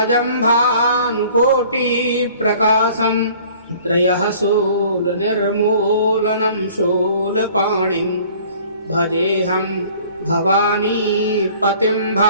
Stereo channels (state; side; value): inverted; both; correlation -0.51